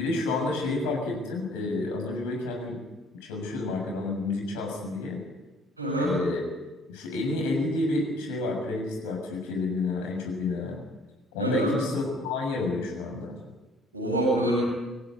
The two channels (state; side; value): normal; both; correlation 0.56